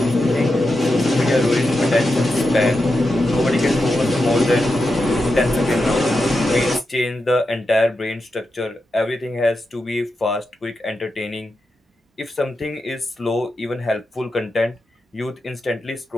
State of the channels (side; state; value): both; normal; correlation 0.88